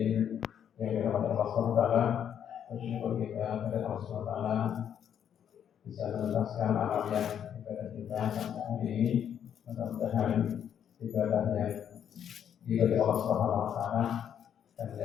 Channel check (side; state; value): right; quieter; 9.0 dB